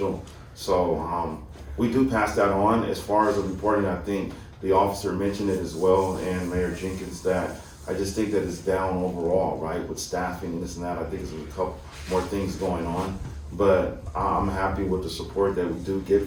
So we do pass that on. As far as the reporting, I think the officer mentioned it as well, and Mayor Jenkins, that I just think that it's down overall, right, with staffing and this and that. I think there's a couple more things going on, but I'm happy with the support that we do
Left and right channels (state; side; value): identical; both; correlation 1.00